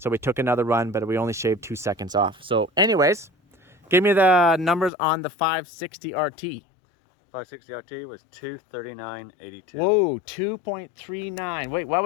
we took another run, but we only shaved 2 seconds off. So anyways, give me the numbers on the 560 RT. 560 RT was 2:39:82. Whoa, 2.39. Wait, what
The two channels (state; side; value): drops out; right; at 4.9 s